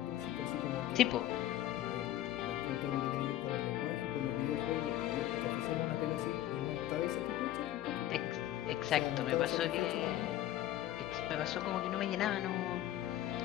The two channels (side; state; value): right; quieter; 13.3 dB